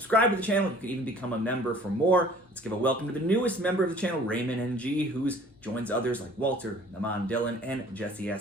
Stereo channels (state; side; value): normal; both; correlation 0.51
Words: to the channel. You can even become a member for more. Let's give a welcome to the newest member of the channel, Raymond NG, who joins others like Walter, Naman Dylan, and Jesse